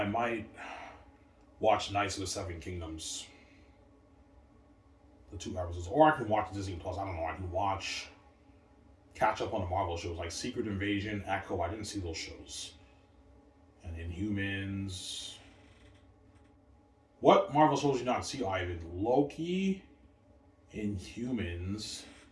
might watch Knights of the Seven Kingdoms. The 2 episodes. Or I can watch Disney Plus. I don't know. I can catch up on the Marvel shows like Secret Invasion, Echo. I didn't see those shows. And Inhumans. What Marvel shows did you not see, Ivan? Loki, Inhumans,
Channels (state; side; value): identical; both; correlation 1.00